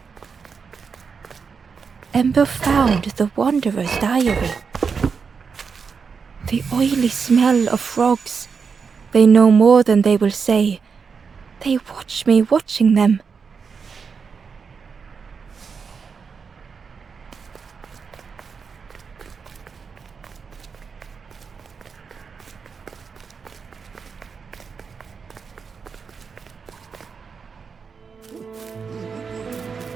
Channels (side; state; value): left; quieter; 5.7 dB